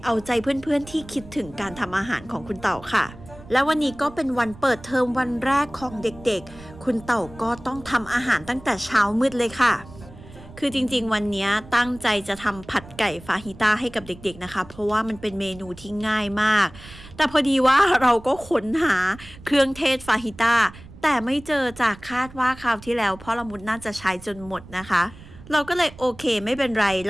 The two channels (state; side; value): noise; right; rumble, 18 dB below the sound